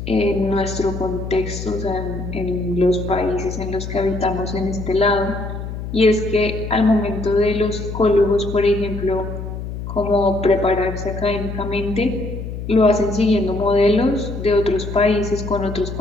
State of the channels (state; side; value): noise; left; hum, 7 dB below the sound